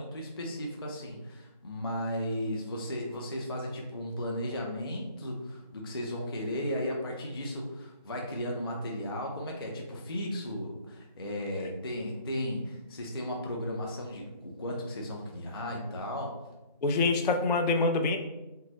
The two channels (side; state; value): both; inverted; correlation -0.51